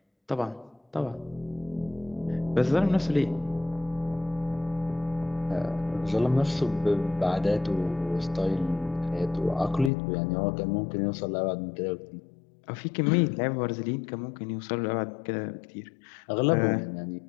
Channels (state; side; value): drops out; right; at 9.9 s